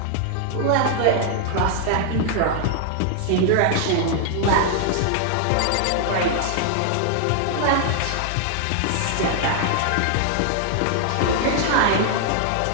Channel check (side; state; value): both; different; correlation 0.00